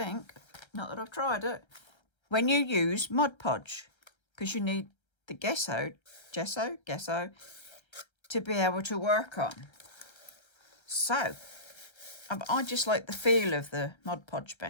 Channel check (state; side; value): late; right; 1.3 ms